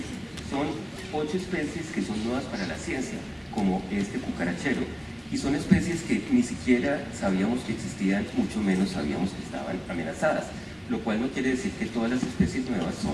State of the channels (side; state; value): both; identical; correlation 1.00